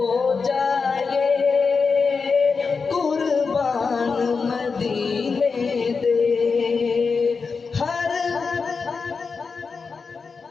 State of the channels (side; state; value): right; quieter; 4.9 dB